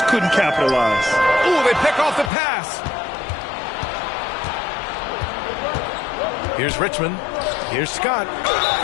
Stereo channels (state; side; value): drops out; right; at 2.3 s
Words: couldn't capitalize. Ooh, they pick off the pass. Here's Richmond. Here's Scott.